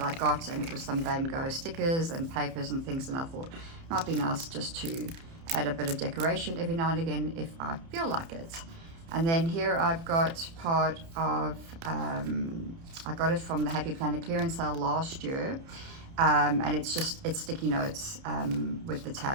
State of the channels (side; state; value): left; late; 30 ms